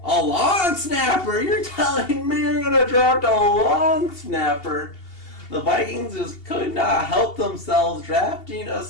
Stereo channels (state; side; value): late; right; 2.7 ms